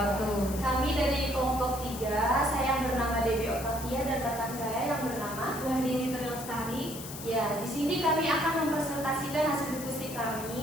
Kami dari kelompok 3, saya yang bernama Debbie Octavia dan rekan saya yang bernama Wahdini Trilestari. Ya, di sini kami akan mempresentasikan hasil diskusi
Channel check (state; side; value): noise; left; hiss, 11 dB below the sound